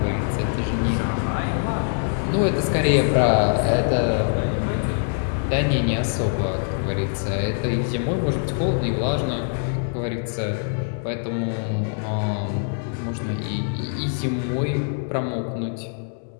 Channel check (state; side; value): silent; right; digital silence